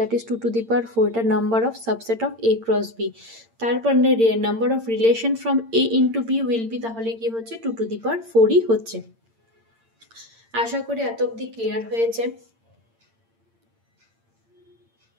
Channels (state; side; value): late; left; 8.8 ms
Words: is 2 to the power 4, এটা number of subset of A cross B. তারপর number of relation from A into B will be, তাহলে কি হচ্ছে 2 to the power 4ই হচ্ছে। আশা করি এত অবধি ক্লিয়ার হয়েছে।